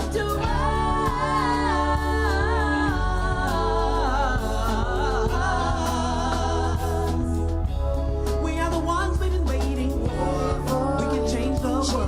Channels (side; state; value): both; identical; correlation 1.00